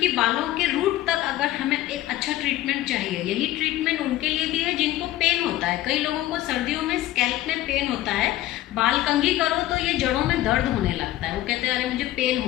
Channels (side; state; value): right; quieter; 14.8 dB